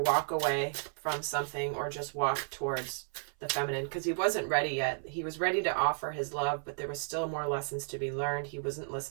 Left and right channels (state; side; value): silent; left; 56 dB below the other